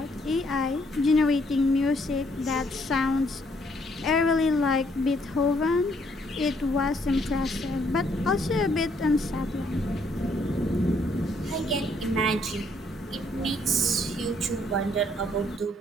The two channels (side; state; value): both; normal; correlation 0.68